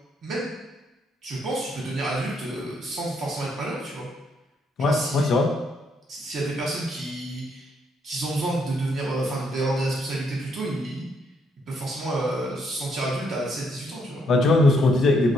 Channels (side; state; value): both; normal; correlation 0.74